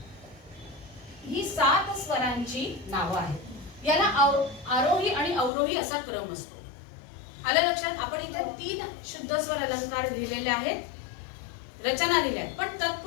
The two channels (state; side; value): drops out; right; at 5.5 s